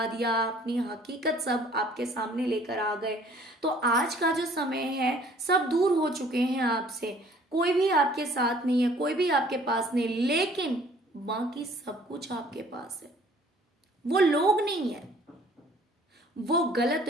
दिया, अपनी हकीकत सब आपके सामने लेकर आ गए, तो आज का जो समय है सब दूर हो चुके हैं आपसे। कोई भी आपके साथ नहीं है, कोई भी आपके पास नहीं, लेकिन बाकी सब कुछ आपके पास है। वो लोग नहीं है, वो गलत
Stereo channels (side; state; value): both; normal; correlation 0.55